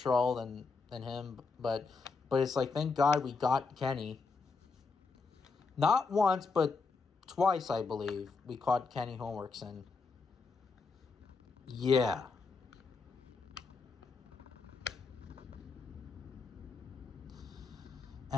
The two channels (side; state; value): right; quieter; 4.5 dB